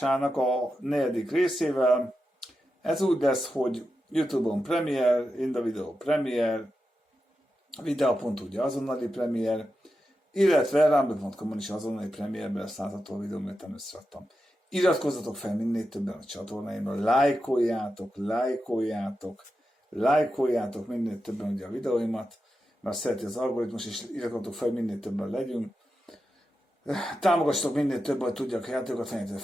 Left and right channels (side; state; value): both; normal; correlation 0.89